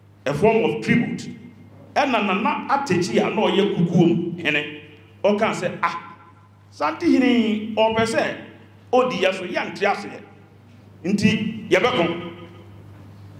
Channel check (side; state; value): both; identical; correlation 1.00